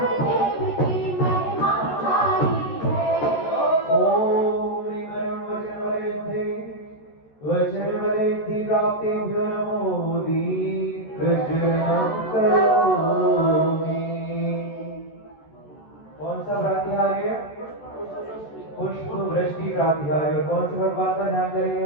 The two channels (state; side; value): late; right; 14 ms